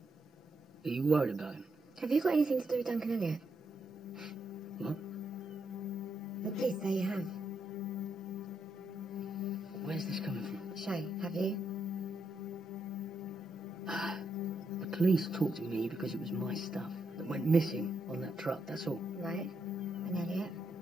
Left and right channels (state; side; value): normal; both; correlation 0.81